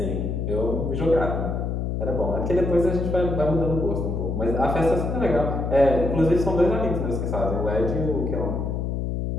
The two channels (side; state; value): left; noise; hum, 1 dB below the sound